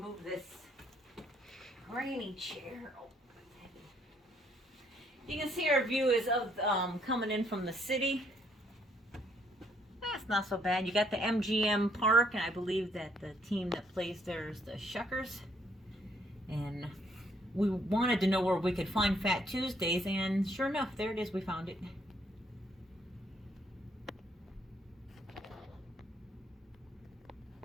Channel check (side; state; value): both; normal; correlation 0.68